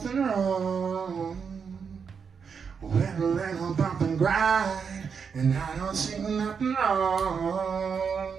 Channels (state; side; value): quieter; left; 6.3 dB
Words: wrong with a little bump and grind, and I don't see nothing wrong,